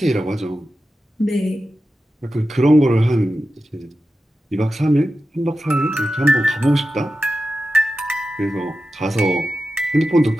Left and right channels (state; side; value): normal; both; correlation 0.92